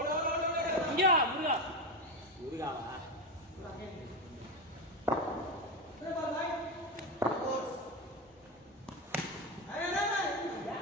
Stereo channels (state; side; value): normal; both; correlation 0.14